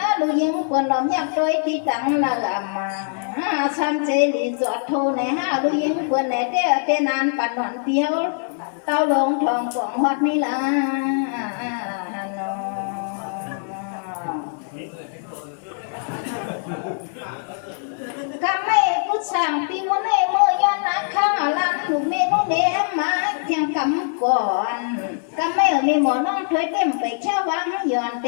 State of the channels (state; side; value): silent; right; 64 dB below the other